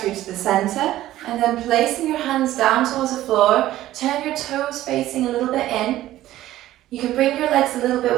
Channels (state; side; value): quieter; left; 14.5 dB